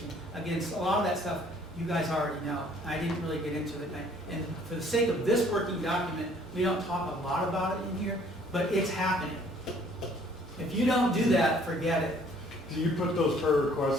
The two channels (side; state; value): both; normal; correlation 0.58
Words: Again, a lot of that stuff you guys already know. I didn't really get into it. And for the sake of this working document, we don't talk a lot about it in here, but it's happening. If you don't do that, forget it. Do you put those prayer